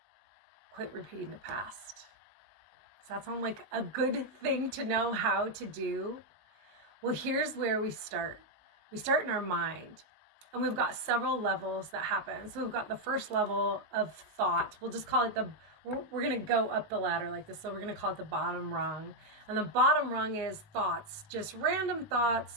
quit repeating the past. Does that sound like a good thing to know how to do? Well, here's where we start. We start in our mind, and we've got several levels that happen. So we've got the first level of thought. We'll just call it we're going to go up the ladder like this. So we're going to call it the bottom rung. And the bottom rung is thoughts, just random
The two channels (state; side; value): late; left; 19 ms